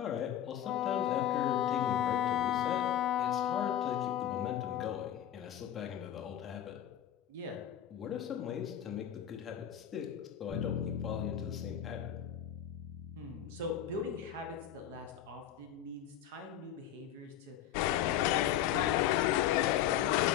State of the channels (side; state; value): right; quieter; 10.6 dB